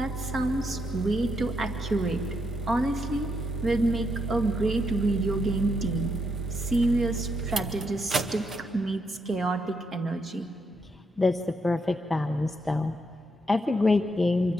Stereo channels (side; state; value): both; normal; correlation 0.79